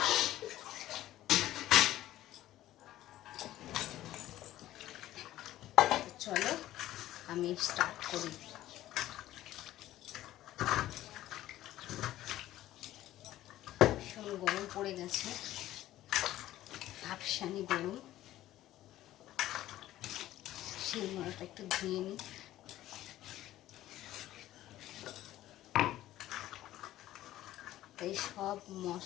চলো আমি স্টার্ট করি। ভীষণ গরম পড়ে গেছে, ভাবসানি গরম। সেই মরাটা একটু ধুয়ে নিই। এই সব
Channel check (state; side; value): quieter; right; 14.4 dB